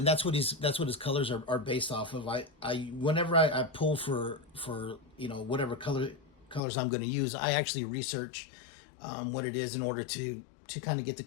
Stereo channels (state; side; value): drops out; right; at 6.6 s